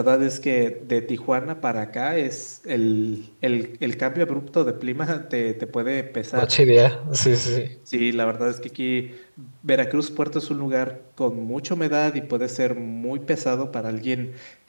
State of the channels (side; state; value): both; inverted; correlation -1.00